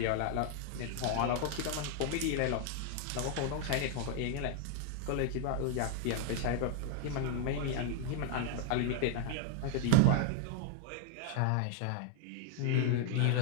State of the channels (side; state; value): both; different; correlation 0.00